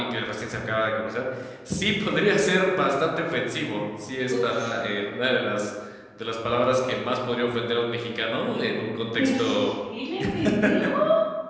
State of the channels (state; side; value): identical; both; correlation 1.00